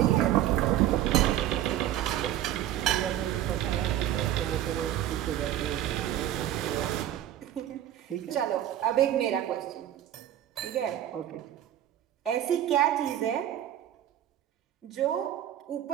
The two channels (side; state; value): left; quieter; 12.0 dB